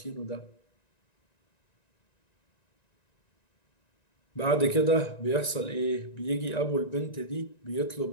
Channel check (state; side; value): late; right; 1.9 ms